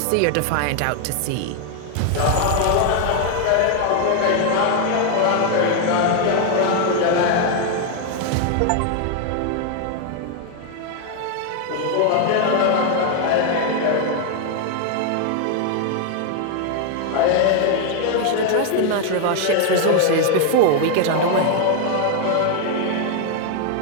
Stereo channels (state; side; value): different; both; correlation 0.00